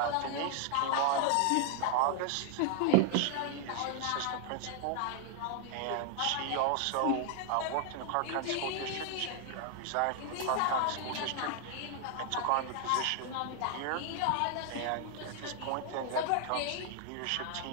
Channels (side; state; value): both; different; correlation 0.00